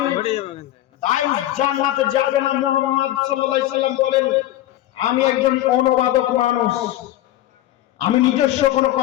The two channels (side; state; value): right; quieter; 14.3 dB